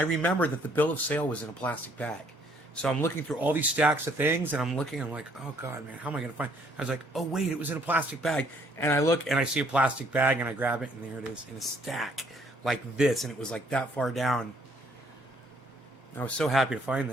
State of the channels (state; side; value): normal; both; correlation 0.64